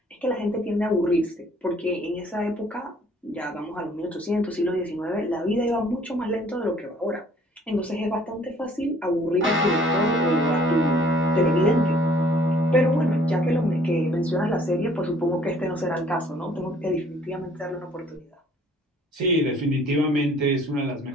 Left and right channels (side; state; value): both; normal; correlation 0.58